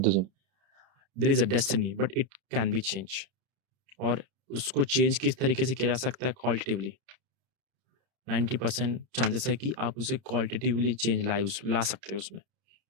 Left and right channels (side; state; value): left; late; 31 ms